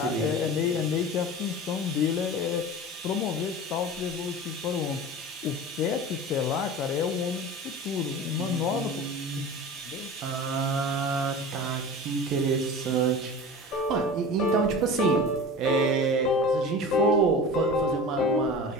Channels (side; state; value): both; normal; correlation 0.34